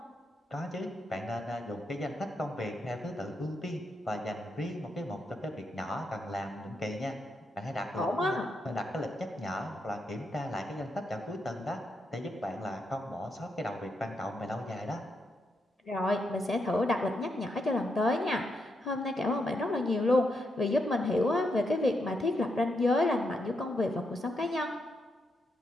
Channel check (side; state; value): both; normal; correlation 0.81